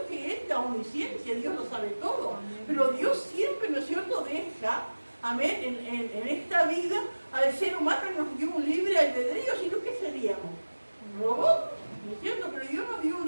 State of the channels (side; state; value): both; inverted; correlation -1.00